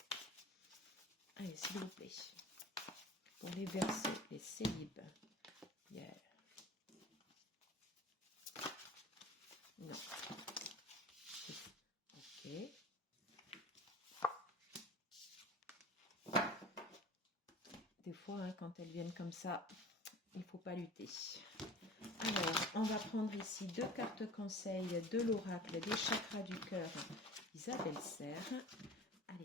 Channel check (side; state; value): both; normal; correlation 0.40